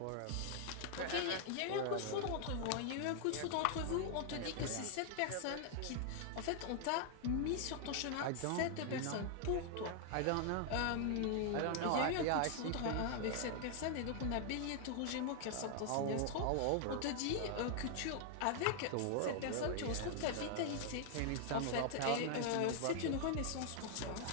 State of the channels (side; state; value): both; different; correlation 0.00